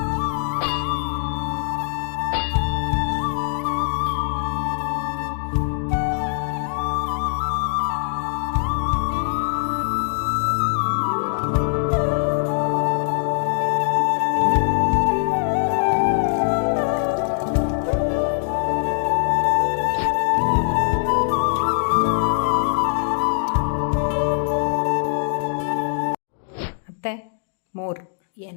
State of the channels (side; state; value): right; silent; digital silence